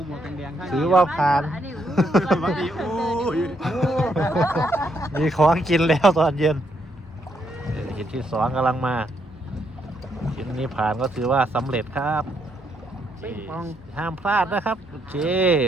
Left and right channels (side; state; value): both; normal; correlation 0.75